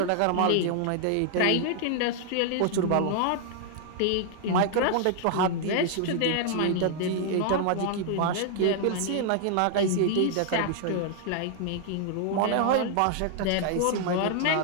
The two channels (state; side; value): different; both; correlation 0.00